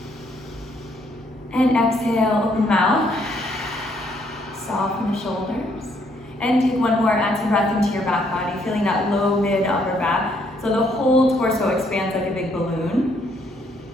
And exhale, open mouth, soften the shoulders. And take one more, add some breath into your back body, feeling that low, mid, upper back. So the whole torso expands like a big balloon.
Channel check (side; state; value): both; normal; correlation 0.69